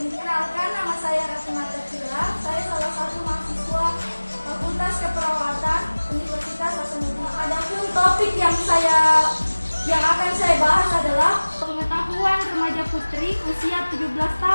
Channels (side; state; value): both; inverted; correlation -1.00